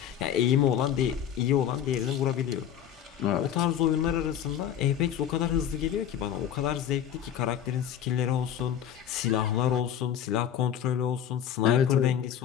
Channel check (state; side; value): quieter; right; 9.8 dB